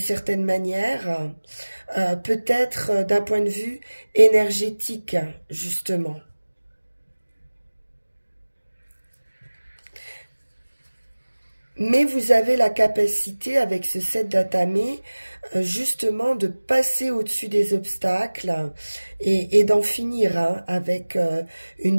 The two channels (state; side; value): inverted; both; correlation -1.00